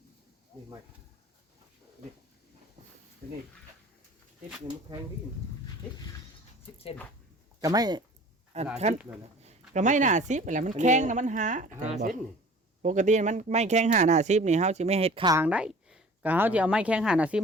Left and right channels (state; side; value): normal; both; correlation 0.46